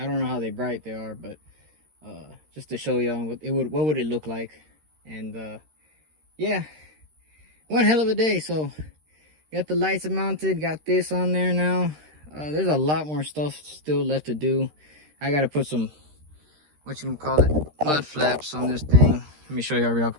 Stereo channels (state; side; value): late; left; 13 ms